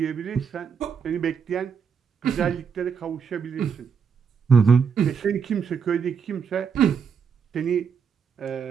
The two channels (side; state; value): left; quieter; 6.5 dB